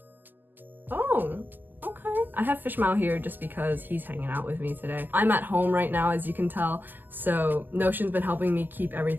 Oh, okay. I have FishMao here just because he's hanging out with me today. I'm at home right now, as you can tell, so Notion's been helping me keep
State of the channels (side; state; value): left; late; 0.092 ms